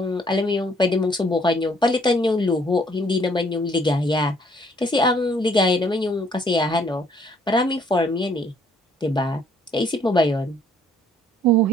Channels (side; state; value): both; normal; correlation 0.63